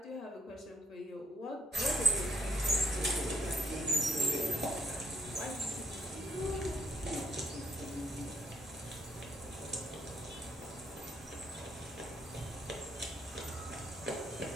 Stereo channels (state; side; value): normal; both; correlation 0.72